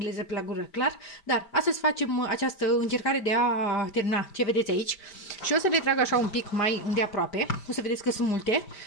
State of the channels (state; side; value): late; right; 5.1 ms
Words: pe la gură, clar, dar astăzi facem această încercare de a termina ce vedeți aici și o să le trag așa un pic mai îndeaproape, o să vedeți că sunt multe,